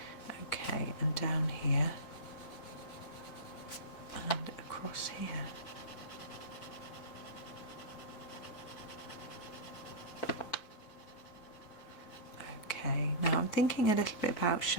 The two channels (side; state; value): right; late; 4.5 ms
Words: Okay, and down here and across here. Okay, now I'm thinking a little bit about